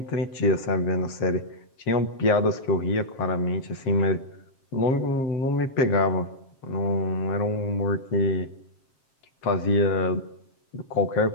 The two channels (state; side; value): late; right; 7.5 ms